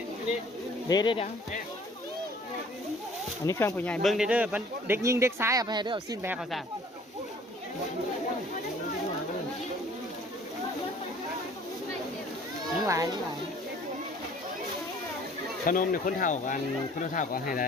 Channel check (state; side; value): normal; both; correlation 0.53